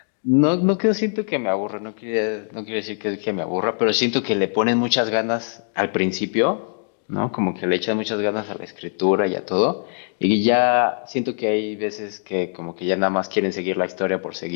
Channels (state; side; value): silent; right; digital silence